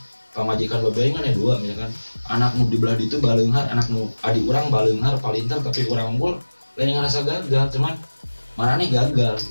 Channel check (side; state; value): both; inverted; correlation -1.00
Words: pamajikan babe aing kan ada dua misalkan anak nu di belah ditu baleunghar anak nu adik urang baleunghar palintar tapi urang unggul lain ngarasa gagal cuman manane gagal